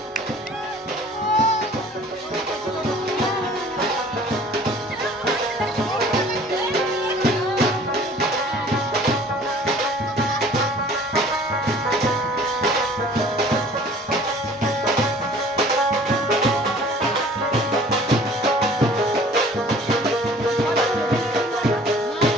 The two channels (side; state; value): both; normal; correlation 0.51